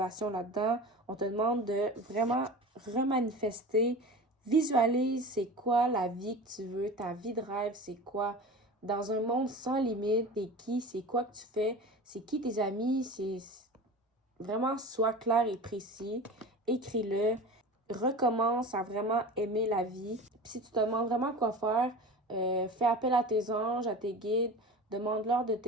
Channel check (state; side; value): normal; both; correlation 0.33